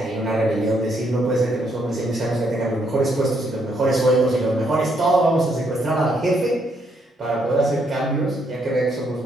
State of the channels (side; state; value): both; normal; correlation 0.74